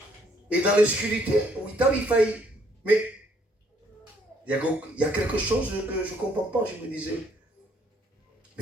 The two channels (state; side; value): normal; both; correlation 0.66